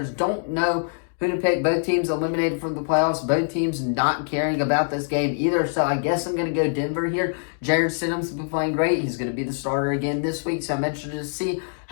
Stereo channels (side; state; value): right; silent; digital silence